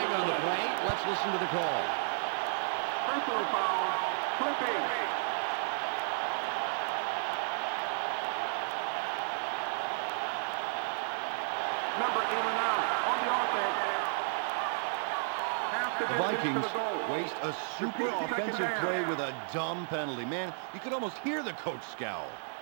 on the play. Let's listen to the call. Personal foul. Clipping. Number 8 on the offense. The Vikings waste a super offensive play with a dumb penalty. Man, you could almost hear the coach scowl.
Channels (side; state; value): left; silent; digital silence